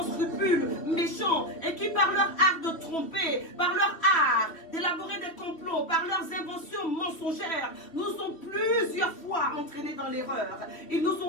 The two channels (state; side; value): late; right; 3.0 ms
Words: scrupules, méchants, et qui par leur art de tromper, par leur art d'élaborer des complots, par leurs inventions mensongères, nous ont plusieurs fois entraînés dans l'erreur. Ils nous